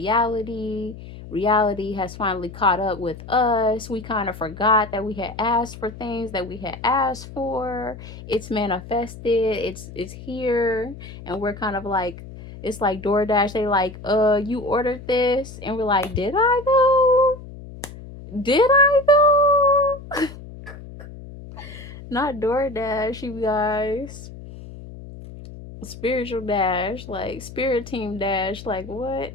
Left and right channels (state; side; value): noise; left; hum, 14 dB below the sound